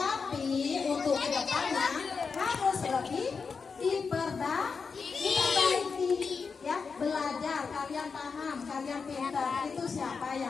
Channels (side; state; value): right; quieter; 5.2 dB